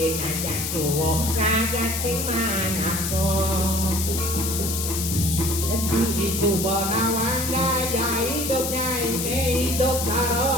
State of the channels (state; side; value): noise; left; hiss, 3 dB below the sound